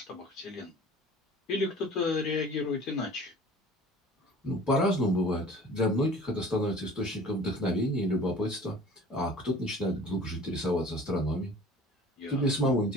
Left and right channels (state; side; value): normal; both; correlation 0.46